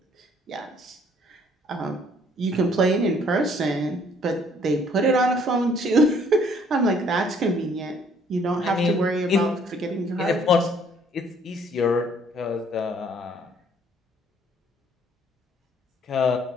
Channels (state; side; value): normal; both; correlation 0.61